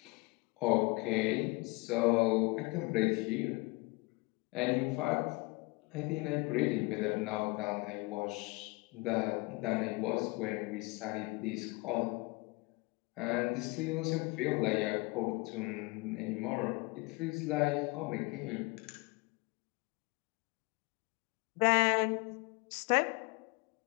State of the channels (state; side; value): quieter; right; 25.6 dB